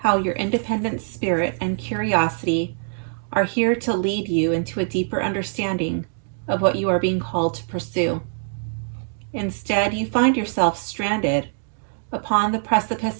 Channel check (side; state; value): left; silent; 63 dB below the other